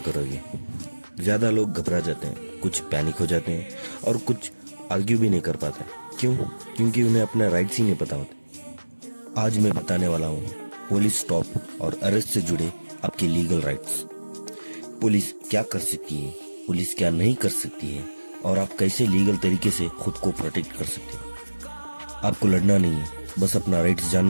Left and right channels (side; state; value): both; inverted; correlation -1.00